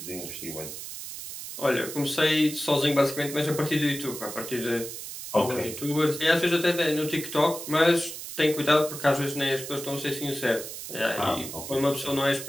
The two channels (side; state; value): right; noise; hiss, 9 dB below the sound